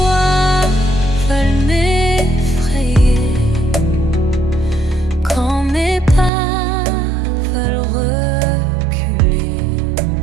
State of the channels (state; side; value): drops out; left; at 6.3 s